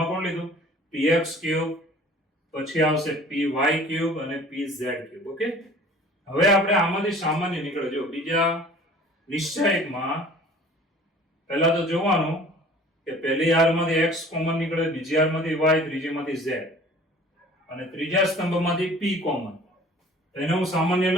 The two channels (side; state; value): both; normal; correlation 0.48